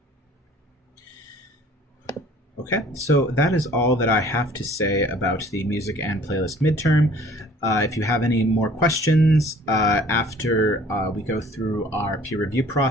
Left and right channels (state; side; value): normal; both; correlation 0.52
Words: Okay, so that is all that I have to say about the music and playlist midterm. If you have any more questions after we go through our peer review